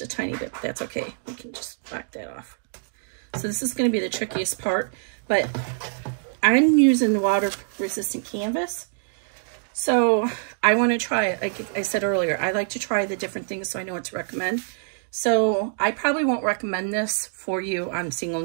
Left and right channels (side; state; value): left; silent; digital silence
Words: a tiny bit, but that's okay. We can just back that off. So this is going to be the trickiest part, but I'm using the water resistant canvas. So I want to try it. Like I said earlier, I like to try the different things so I know what to recommend. So I probably won't recommend this for you on single